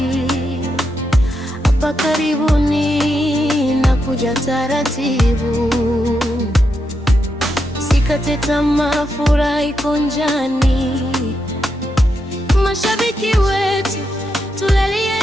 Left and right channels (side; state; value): both; normal; correlation 0.83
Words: Hapa karibuni na kuja taratibu, sikate tamaa, furaha iko njiani. Mashabiki wetu